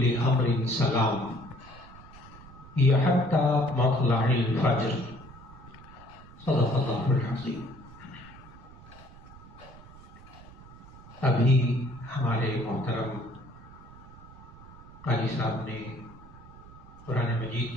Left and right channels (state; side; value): noise; right; rumble, 19 dB below the sound